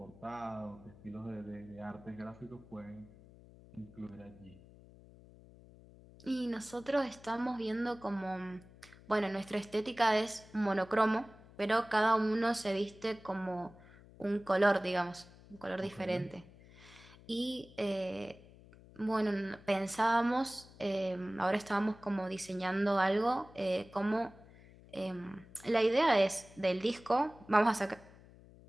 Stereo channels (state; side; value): noise; left; hum, 22 dB below the sound